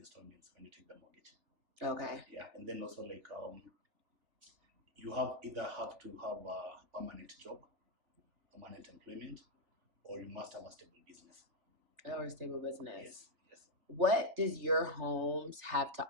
when you take the mortgage. Okay. Yeah, and then also you either have to have a permanent job, permanent employment, or you must have a stable business. Or a stable business. Yes. What does your homes have to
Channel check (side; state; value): left; late; 3.4 ms